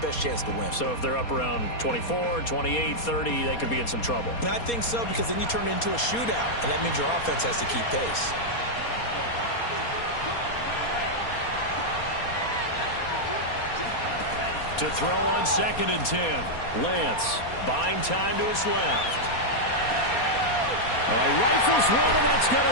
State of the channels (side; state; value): right; late; 4.2 ms